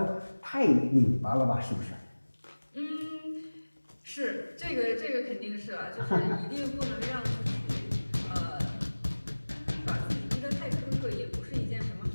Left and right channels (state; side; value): inverted; both; correlation -1.00